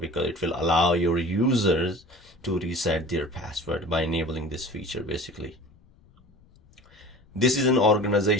it will allow your users to reset their password by enabling this feature. Basically, this is an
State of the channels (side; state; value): left; noise; rumble, 29 dB below the sound